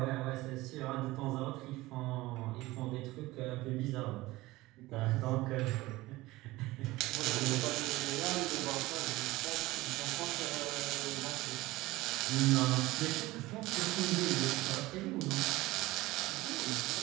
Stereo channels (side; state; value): left; quieter; 19.2 dB